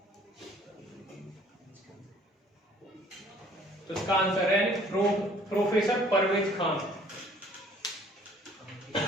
तो इसका आंसर है प्रोफेसर परवेज खान।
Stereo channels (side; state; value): both; normal; correlation 0.56